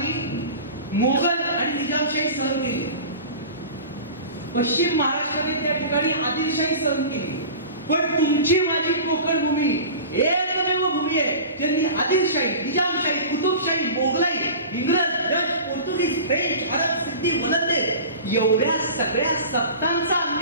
मोगल आणि निजामशाही सहन केली. पश्चिम महाराष्ट्राने त्या ठिकाणी आदिलशाही सहन केली. पण तुमची माझी कोकण भूमी एकमेव भूमी आहे ज्यांनी आदिलशाही, निजामशाही, कुतुबशाही, मोगलाई, इंग्रज, डच, पोर्तुगीज, फ्रेंच, अरब, सिद्धी, वलंदे एवढ्या सगळ्या सत्तांचा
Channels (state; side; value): inverted; both; correlation -0.36